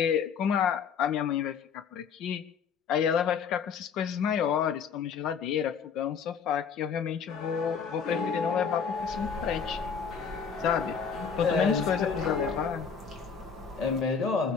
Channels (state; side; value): quieter; right; 6.5 dB